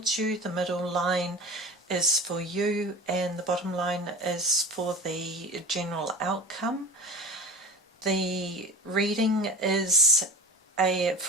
you. The middle line is for you and the bottom line is for the general outcome. The reading is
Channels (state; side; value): normal; both; correlation 0.32